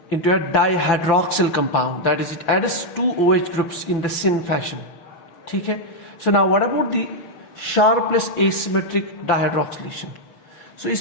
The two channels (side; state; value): right; late; 5.9 ms